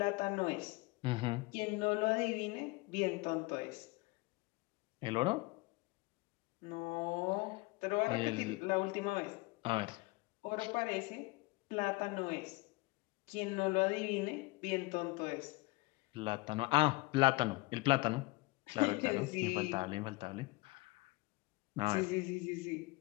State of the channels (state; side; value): quieter; right; 23.5 dB